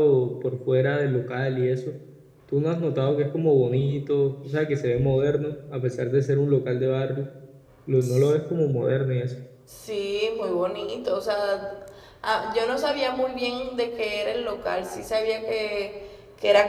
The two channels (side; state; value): both; identical; correlation 1.00